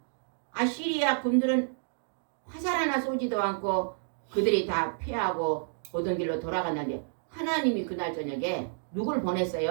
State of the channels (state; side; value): silent; left; digital silence